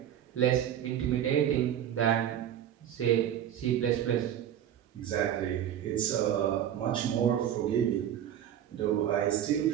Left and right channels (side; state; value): left; quieter; 10.4 dB